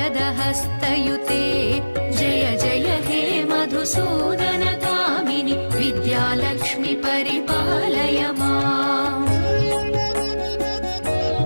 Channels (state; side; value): inverted; both; correlation -1.00